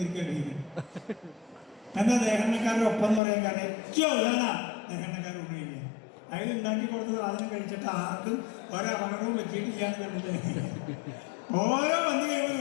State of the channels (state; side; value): drops out; right; at 3.2 s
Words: എന്താ ദേഹന്നക്കാരുടെ ഒപ്പം എന്ന് പറയാൻ കാരണം ഏറ്റവും ഉള്ളതാണ് ദേഹന്നക്കാർ ഊണ് കഴിക്കുക. അതിൽ ഉണ്ടാക്കി കൊടുത്ത സാധനം കഴിച്ചിട്ട് ആർക്കും ഒരപകടവും പറ്റിയിട്ടില്ല എന്ന് കണ്ടിട്ട് ഓരോ പന്നി കഴിയുമ്പോൾ